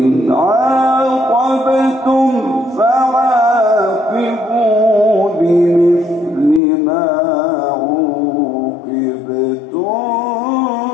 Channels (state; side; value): drops out; right; at 6.6 s